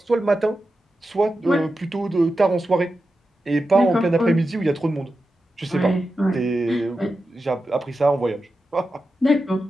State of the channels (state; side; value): normal; both; correlation 0.91